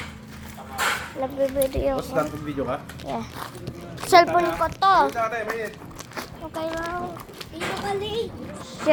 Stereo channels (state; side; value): identical; both; correlation 1.00